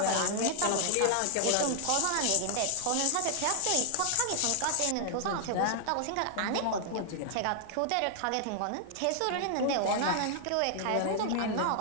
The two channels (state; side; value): different; both; correlation 0.00